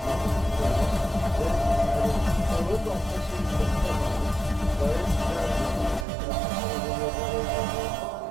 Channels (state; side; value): drops out; left; at 6.1 s